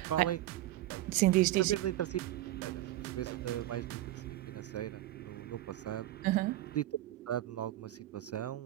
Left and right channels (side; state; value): left; quieter; 15.0 dB